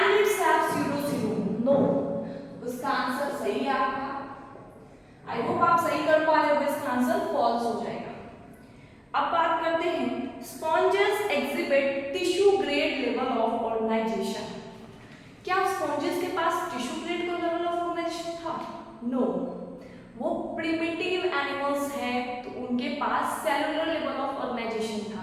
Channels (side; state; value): both; identical; correlation 1.00